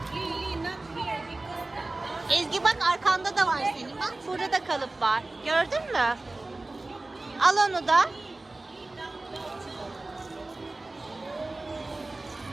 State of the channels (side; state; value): left; quieter; 3.0 dB